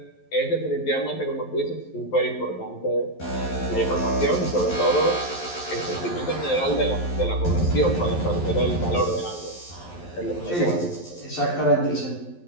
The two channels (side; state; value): right; late; 11 ms